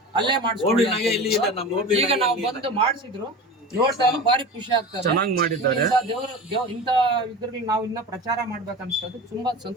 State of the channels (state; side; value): normal; both; correlation 0.32